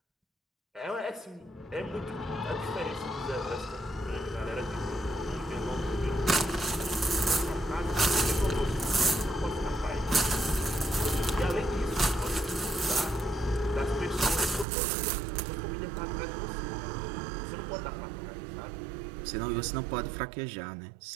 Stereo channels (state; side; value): drops out; left; at 14.7 s